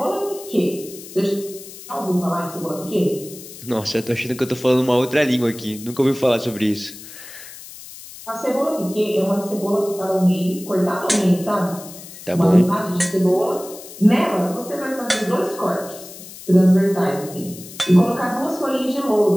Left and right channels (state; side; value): noise; left; hiss, 16 dB below the sound